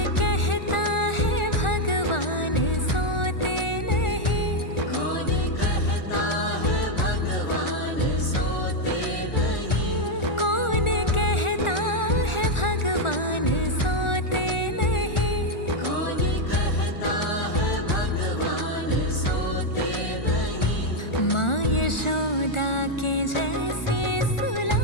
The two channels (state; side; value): late; right; 1.4 ms